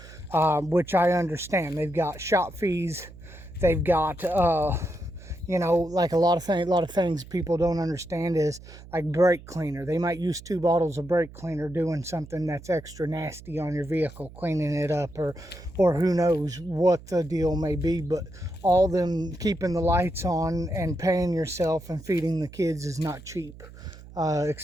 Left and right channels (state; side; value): noise; right; hum, 18 dB below the sound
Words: which I understand. They've got shop fees, they've got you know, like a lot of things people don't understand is like brake cleaner. They might use 2 bottles of brake cleaner doing something that's extra nasty on your vehicle, cleaning it up, or who knows what the deal may be. But all them keeping the lights on and paying yourself and feeding the kids is not cheap,